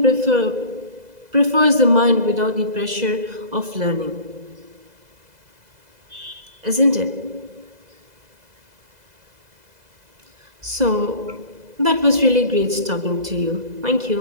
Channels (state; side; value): late; left; 2.0 ms